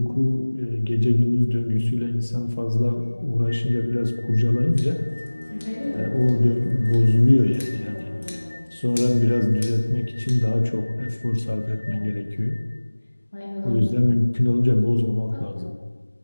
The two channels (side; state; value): both; inverted; correlation -1.00